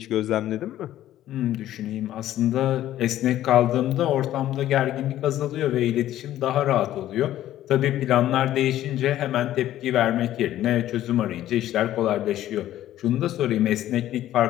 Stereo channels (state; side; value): quieter; right; 13.1 dB